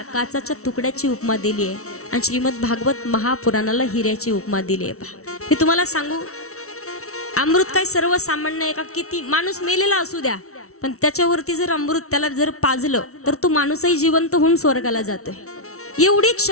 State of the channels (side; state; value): right; late; 0.63 ms